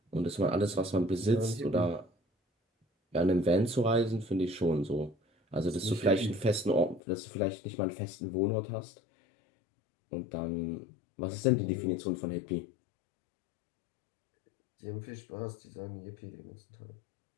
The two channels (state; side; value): drops out; right; at 7.0 s